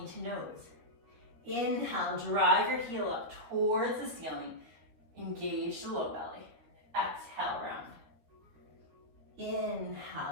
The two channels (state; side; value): late; left; 13 ms